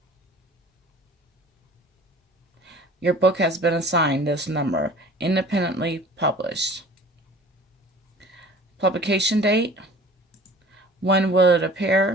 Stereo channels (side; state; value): both; normal; correlation 0.46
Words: your book has been assigned this number, independently published. Publication date, when will it